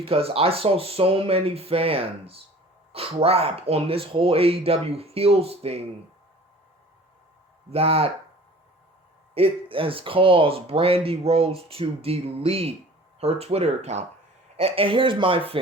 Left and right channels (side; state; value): both; normal; correlation 0.46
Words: I saw so many fans crap on this whole AEW Heels thing that it has caused Brandi Rhodes to delete her Twitter account. And here's my